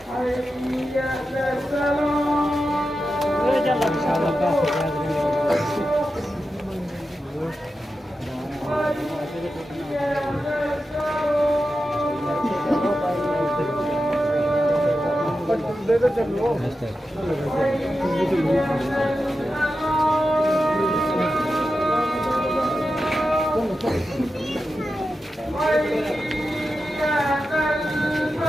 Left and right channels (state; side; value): normal; both; correlation 0.91